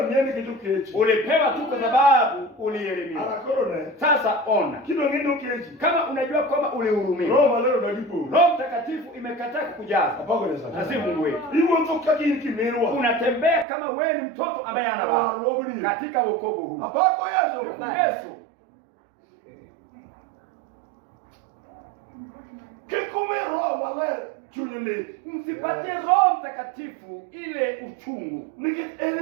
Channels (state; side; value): drops out; left; at 13.7 s